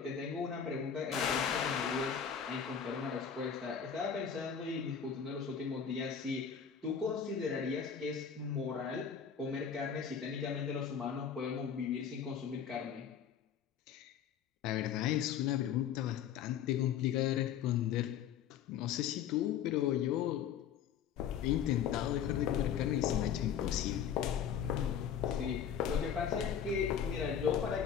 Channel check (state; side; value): quieter; right; 8.1 dB